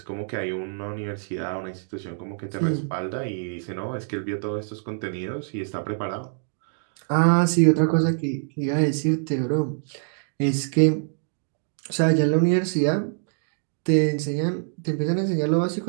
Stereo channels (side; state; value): left; silent; digital silence